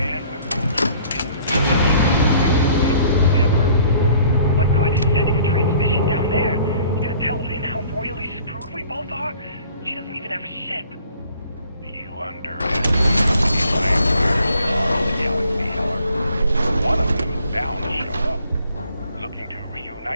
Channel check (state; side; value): inverted; both; correlation -0.56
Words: goes never. What good is sending a transmission down there? You gonna tell Lynn how royally screwed we both are? She doesn't even have a ship. You underestimate the empires of the galaxy, Heller. One of them is bound to show up, looking to